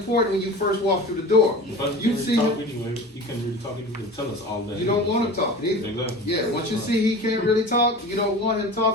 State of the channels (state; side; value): normal; both; correlation 0.36